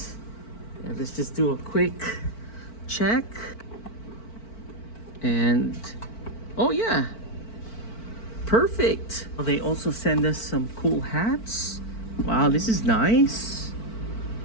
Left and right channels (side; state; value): right; late; 4.5 ms